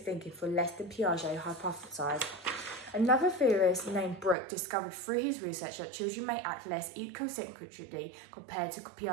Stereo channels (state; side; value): drops out; left; at 4.4 s